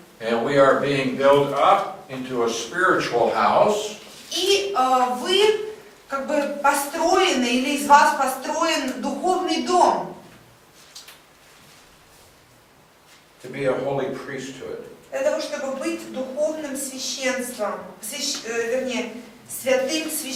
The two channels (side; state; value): both; identical; correlation 1.00